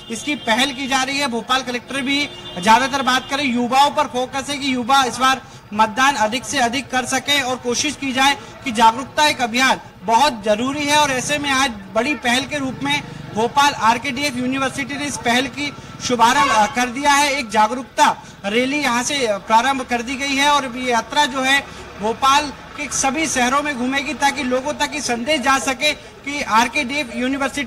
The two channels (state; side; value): identical; both; correlation 1.00